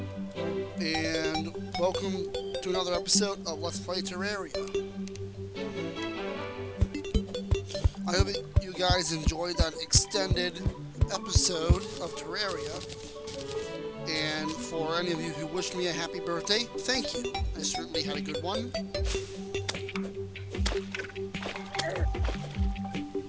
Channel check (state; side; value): identical; both; correlation 1.00